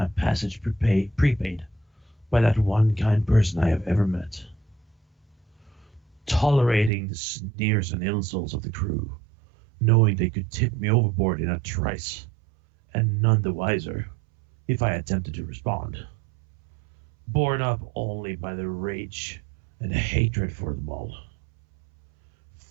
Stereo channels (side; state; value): left; drops out; at 6.9 s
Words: passage prepaid by that one kind person I have ever met, tolerating the sneers and insults of the crew, knowing they could tip me overboard in a trice, and none the wiser if I attempted to respond, borne up only by the rage and hatred for them all.